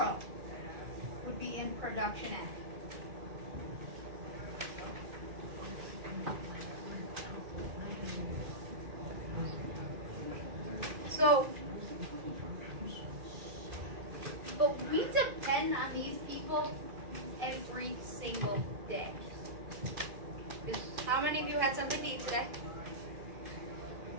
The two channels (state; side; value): late; left; 2.4 ms